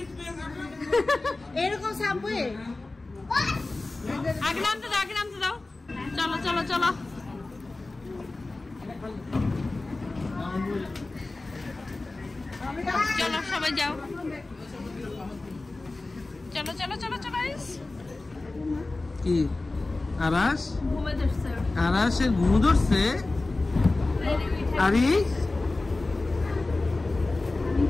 এরকম সাবওয়ে আগে নামতে দাও, আগে নামতে দাও। চলো চলো চলো। চলো সবাই যাও। চলো চলো চলো চলো। কি আরাস? ঘুমে ধরছে। আরাসের ঘুম ধরছে? আরে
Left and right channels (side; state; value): right; quieter; 3.2 dB